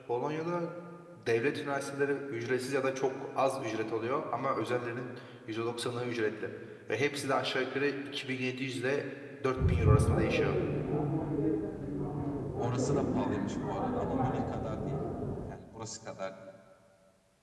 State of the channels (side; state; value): both; identical; correlation 1.00